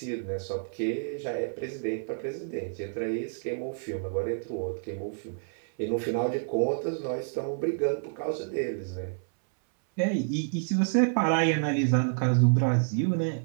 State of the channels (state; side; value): silent; left; 59 dB below the other